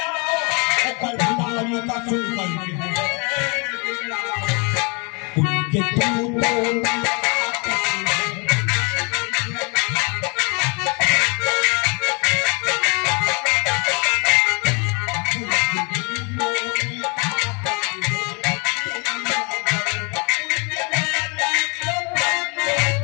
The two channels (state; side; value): quieter; right; 32.4 dB